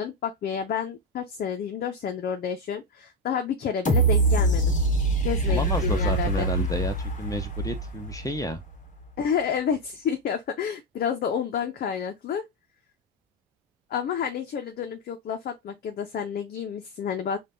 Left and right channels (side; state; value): both; normal; correlation 0.06